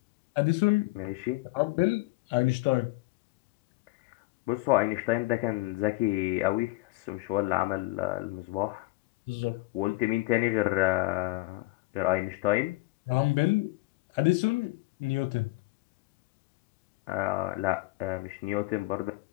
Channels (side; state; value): right; quieter; 22.3 dB